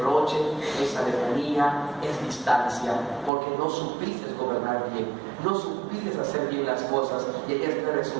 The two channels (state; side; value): drops out; left; at 3.3 s